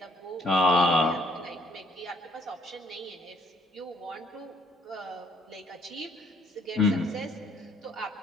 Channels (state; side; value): normal; both; correlation 0.65